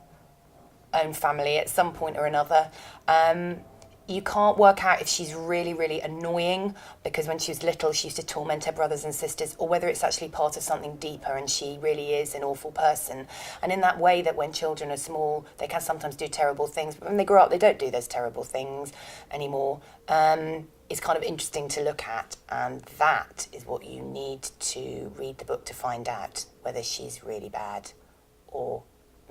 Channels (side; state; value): both; identical; correlation 1.00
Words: own family at some point or another. You can't work out if she's really, really annoying because when she was little she used to torment her brothers and sisters, or whether it's actually part of something deeper and she really is an awful person. And in that way that when children are small they can sometimes do terrible things, but when they grow up they don't do those terrible things anymore. It's kind of interesting to look at, and that is what you need to read the book to find out whether she's really bad or